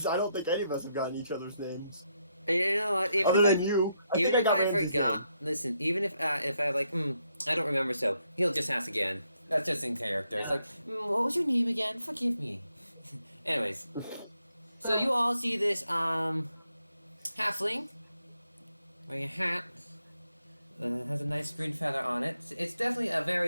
I don't think any of us have gotten each other's names. And you know what? Even Other if than you. even think if I got Ramsey's forgot, listen. Even if I like, I don't remember. So he'll just ask again. That's just in character. It's like, what was your name again? Forgive me. Anyways, so you all see this halfling wearing a hat. Has a nice green feather on it. It's definitely a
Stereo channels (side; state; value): both; inverted; correlation -0.78